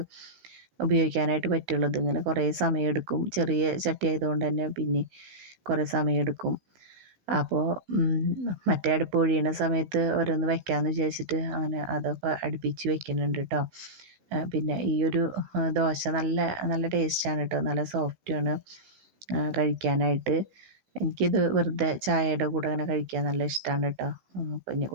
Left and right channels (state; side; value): late; left; 16 ms